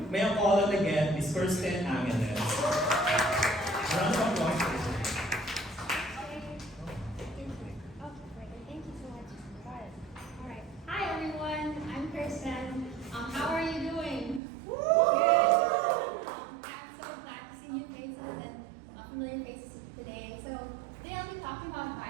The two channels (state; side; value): drops out; left; at 14.4 s